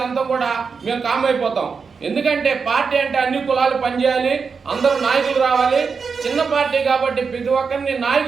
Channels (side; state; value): left; quieter; 5.4 dB